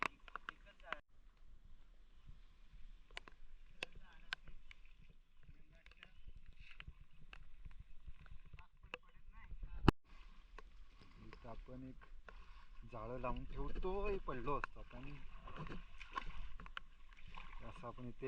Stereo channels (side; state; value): both; identical; correlation 1.00